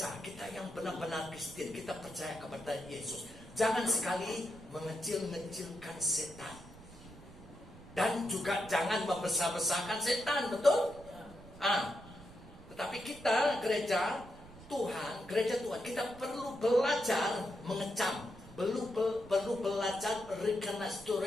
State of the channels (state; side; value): noise; right; rumble, 18 dB below the sound